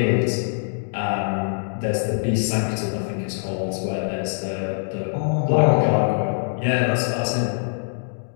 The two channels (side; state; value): right; silent; digital silence